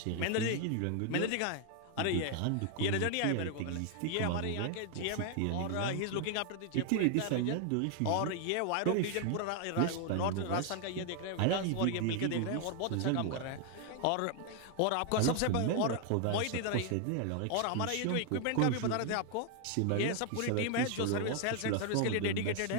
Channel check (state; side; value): different; both; correlation 0.00